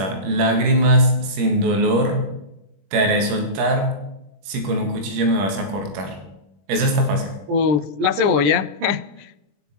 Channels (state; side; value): late; left; 21 ms